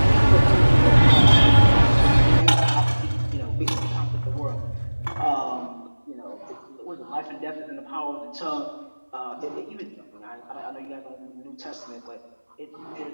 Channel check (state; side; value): inverted; both; correlation -1.00